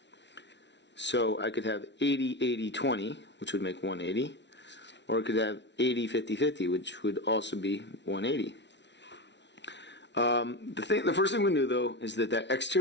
So I could have 80, 80, 20, which would make 180. Or I could have 80, 50, 50, which would also be 180. The first thing we knew, though, is that that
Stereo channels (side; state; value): right; late; 0.51 ms